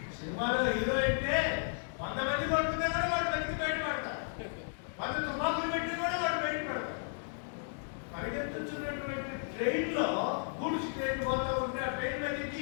సినిమాలో హీరో అంటే 100 మంది కొడుతున్నా కూడా వాడు బతికి బయటపడతారు. 100 తుపాకులు పెట్టి కూడా వాడు బయటపడతారు. పరిగెత్తున్నటువంటి ట్రైన్ లో గూడ్స్ ట్రైన్ పోతా ఉంటే ఆ ట్రైన్ మీద ఎక్కి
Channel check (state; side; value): silent; right; digital silence